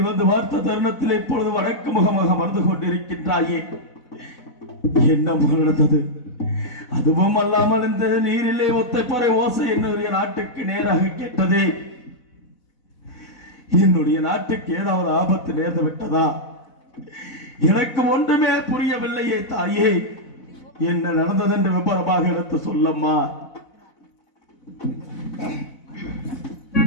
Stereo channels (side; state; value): right; late; 4.0 ms